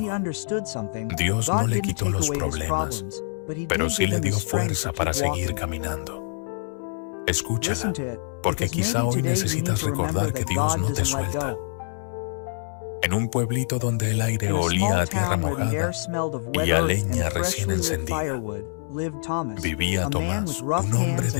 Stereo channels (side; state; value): right; silent; 62 dB below the other